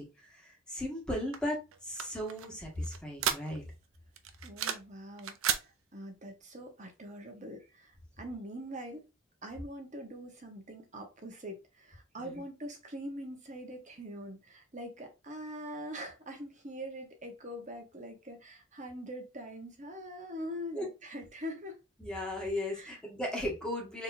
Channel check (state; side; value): normal; both; correlation 0.40